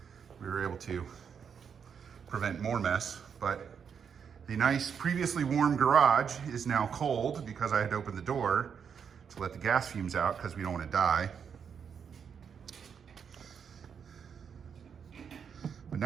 We were able to prevent more mess, but the nice previously warm garage is now cold because I had to open the door to let the gas fumes out because we don't want to die. But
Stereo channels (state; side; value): quieter; left; 7.1 dB